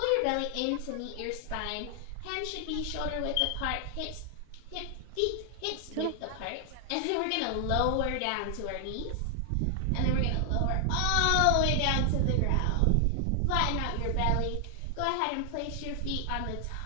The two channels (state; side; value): different; both; correlation 0.00